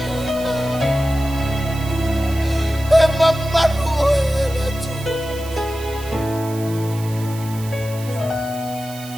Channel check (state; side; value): noise; right; hiss, 16 dB below the sound